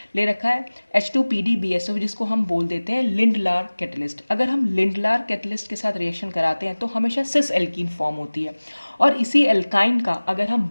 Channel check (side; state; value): both; inverted; correlation -1.00